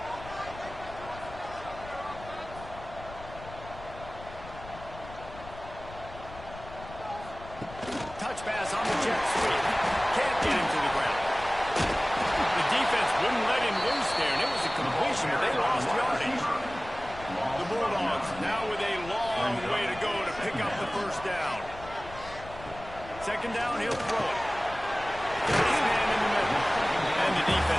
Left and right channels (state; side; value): noise; left; rumble, 15 dB below the sound